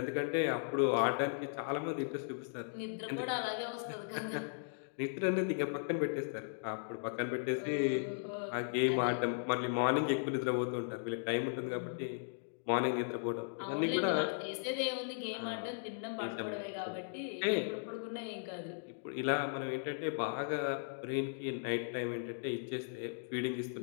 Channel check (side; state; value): right; silent; digital silence